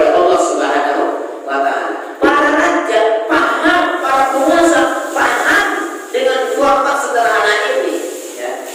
Allah Subhanahu wa Ta'ala. Para raja paham, para penguasa paham dengan format sederhana ini, ya,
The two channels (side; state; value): both; identical; correlation 1.00